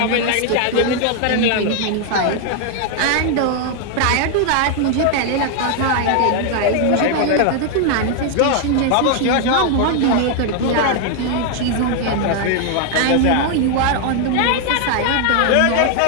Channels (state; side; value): different; both; correlation 0.00